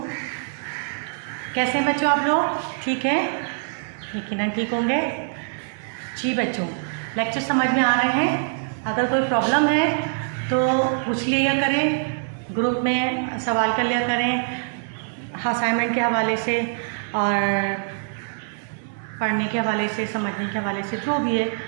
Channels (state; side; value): silent; left; 63 dB below the other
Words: कैसे हैं बच्चों आप लोग? ठीक है, यकीनन ठीक होंगे। जी बच्चों, लेक्चर समझ में आ रहे हैं? अगर कोई प्रॉब्लम है तो पूछ लिया करें, ग्रुप में सवाल कर लिया करें असाइनमेंट के हवाले से और पढ़ने के हवाले से, समझने के हवाले से, जो भी है